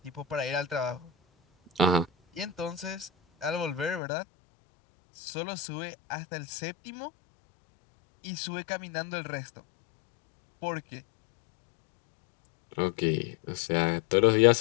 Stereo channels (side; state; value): right; drops out; at 4.0 s